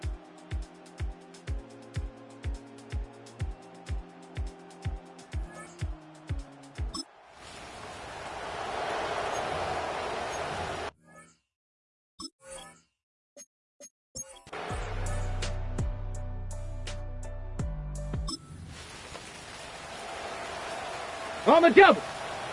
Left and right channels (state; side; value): identical; both; correlation 1.00